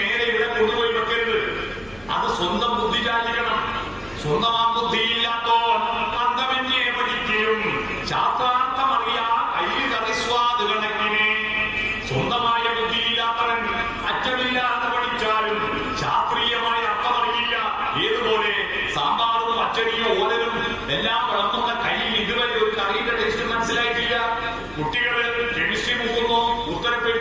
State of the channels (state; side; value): noise; right; hum, 25 dB below the sound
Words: ഇവിടെ കൊണ്ടുപോയി വെക്കരുത്. അത് സ്വന്തം ബുദ്ധി ചാലിക്കണം. സ്വന്തം ആ ബുദ്ധിയില്ലാത്തോ അന്തമേ